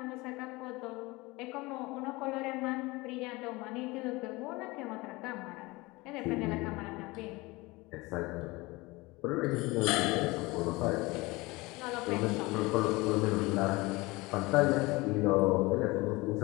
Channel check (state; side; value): quieter; right; 22.7 dB